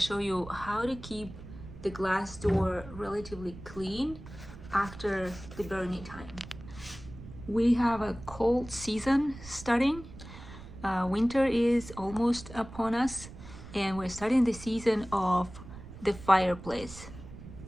you how to keep the glass door relatively clean after the burning time. We have a cold season starting. Winter is almost upon us and we're starting the season of the fireplace.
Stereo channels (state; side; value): noise; right; rumble, 15 dB below the sound